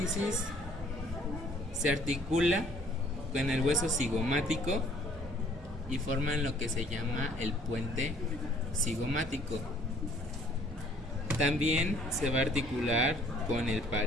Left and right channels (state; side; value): normal; both; correlation 0.59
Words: se articula con el hueso cigomático y forman lo que se llama el puente cigomático. También se va a articular con el